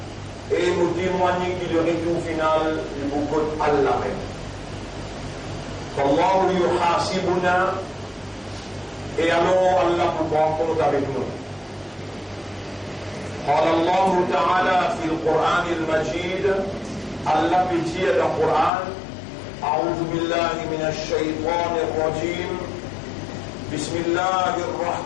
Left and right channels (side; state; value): right; drops out; at 18.7 s